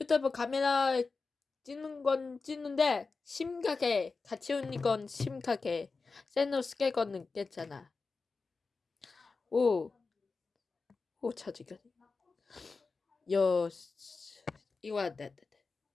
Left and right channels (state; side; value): quieter; right; 4.3 dB